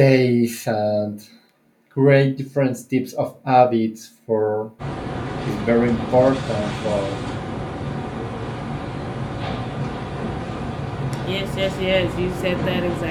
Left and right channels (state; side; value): identical; both; correlation 1.00